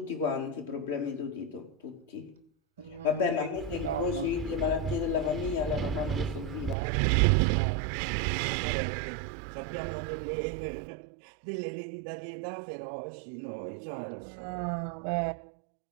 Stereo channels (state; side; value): drops out; left; at 6.8 s